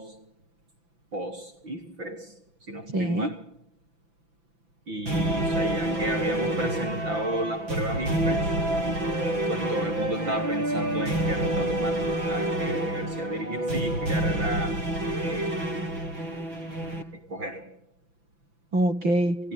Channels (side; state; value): left; late; 6.0 ms